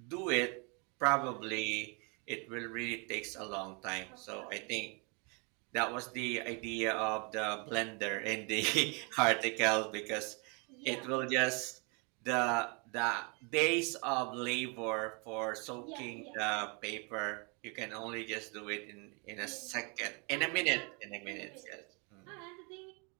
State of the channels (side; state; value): left; quieter; 33.5 dB